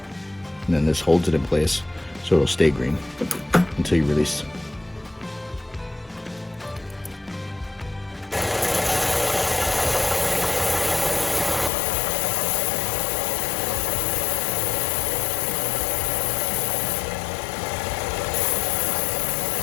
And then this holds it in place so it'll stay green until you release.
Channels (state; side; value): drops out; right; at 11.7 s